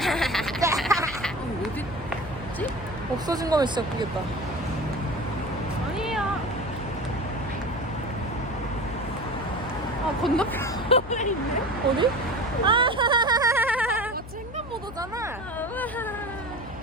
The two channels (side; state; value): left; noise; hum, 13 dB below the sound